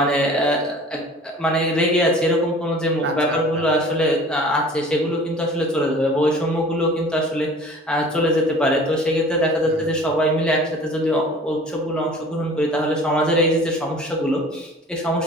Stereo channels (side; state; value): both; normal; correlation 0.45